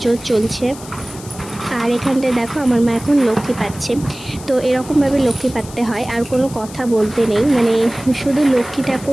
চলছে। আর এখানটায় দেখো আমার মা এখন লক্ষ্মী পাচ্ছে। তো এরকমভাবে লক্ষ্মী পাততে হয়, আর কোনো কথা বলতে নেই, মানে শুধু লক্ষ্মী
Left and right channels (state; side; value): noise; left; hiss, 17 dB below the sound